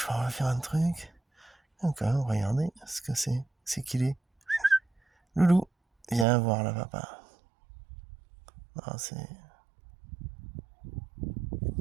vais faire un truc. Ok, regardez ce que c'est. C'est qu'il est. Loulou, viens voir là, papa. Ah, c'est...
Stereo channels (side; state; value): left; drops out; at 6.2 s